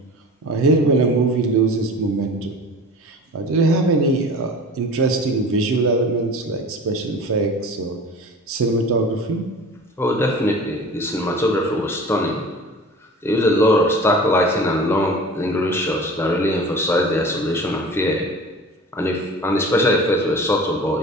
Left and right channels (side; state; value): both; normal; correlation 0.39